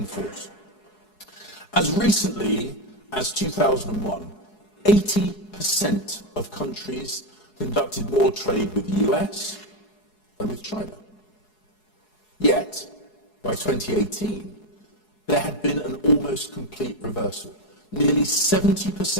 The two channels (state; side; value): late; right; 4.7 ms